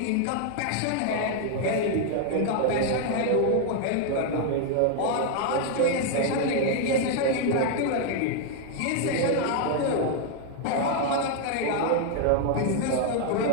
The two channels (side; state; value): both; different; correlation 0.00